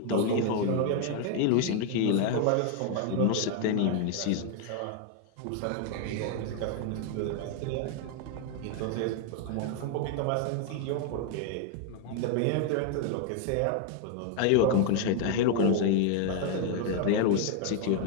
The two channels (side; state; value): both; different; correlation 0.01